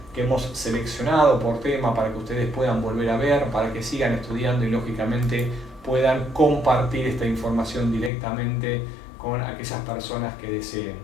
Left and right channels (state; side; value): drops out; right; at 8.1 s